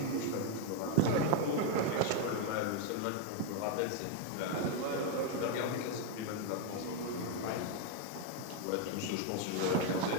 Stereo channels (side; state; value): both; different; correlation 0.01